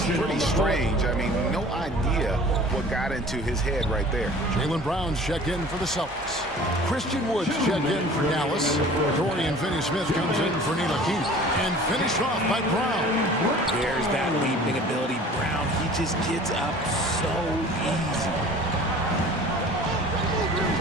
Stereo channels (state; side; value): normal; both; correlation 0.45